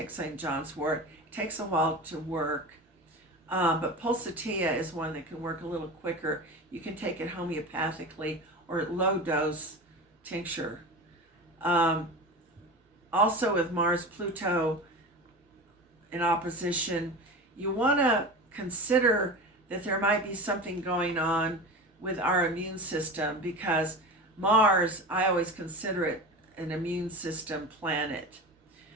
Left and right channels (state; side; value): normal; both; correlation 0.30